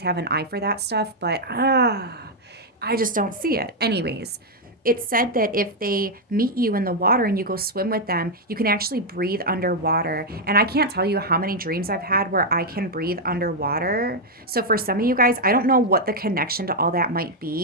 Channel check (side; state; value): both; normal; correlation 0.00